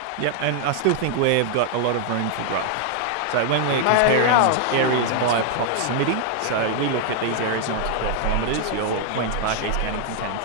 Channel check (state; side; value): different; both; correlation 0.00